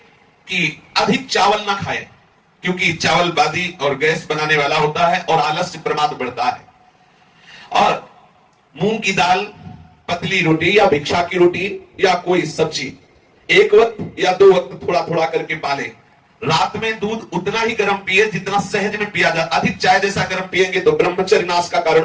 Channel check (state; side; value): identical; both; correlation 1.00